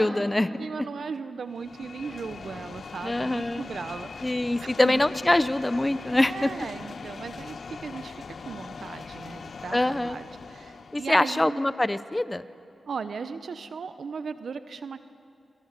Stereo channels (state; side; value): normal; both; correlation 0.97